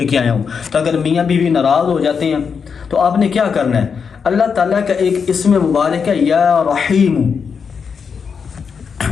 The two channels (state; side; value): quieter; right; 6.1 dB